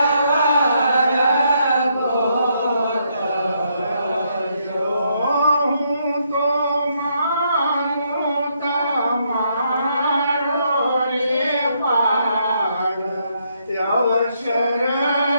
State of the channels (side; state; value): both; inverted; correlation -0.75